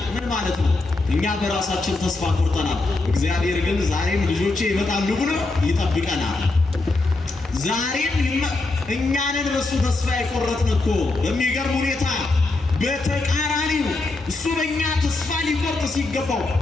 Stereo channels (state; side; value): quieter; right; 3.2 dB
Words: ምን ማለት ነው? እኛ በራሳችን ተስፋ ቆርጠናል። እግዚአብሔር ግን ዛሬም ልጆቼ ይመጣሉ ብሎ ይጠብቀናል። ዛሬም እኛንን በሱ ተስፋ የቆረጥን እኮ በሚገርም ሁኔታ በተቃራኒው እሱ በእኛ ተስፋ ሊቆርጥ ሲገባው